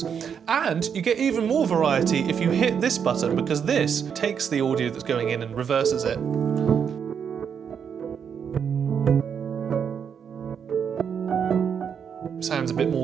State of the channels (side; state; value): left; quieter; 7.4 dB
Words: And you get even more variety if you hit this button, because this takes the audio that's going in and reverses it. Sounds a bit